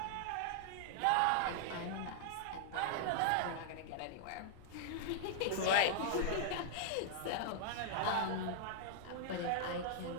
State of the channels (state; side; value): different; both; correlation -0.01